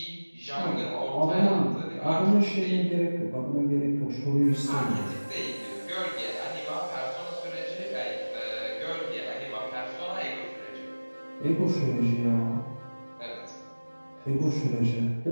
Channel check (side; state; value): both; inverted; correlation -1.00